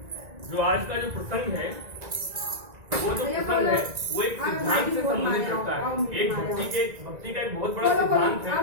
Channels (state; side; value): late; left; 1.9 ms